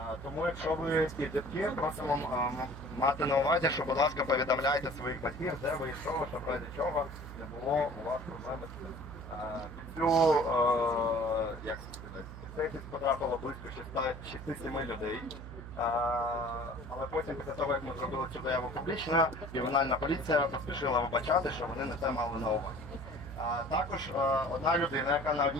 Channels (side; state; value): right; noise; hum, 12 dB below the sound